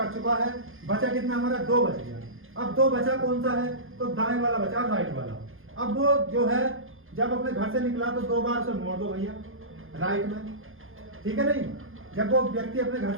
चुका है, बचा कितना हमारा 2 बच गया। अब 2 बचा कौन सा है, तो दाएं वाला बचा, राइट वाला। अब वो जो है जब अपने घर से निकला तो 2 बार उसे मोड़ दो भैया राइट में, ठीक है नहीं। जब वो व्यक्ति अपने घर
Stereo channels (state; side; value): late; left; 0.60 ms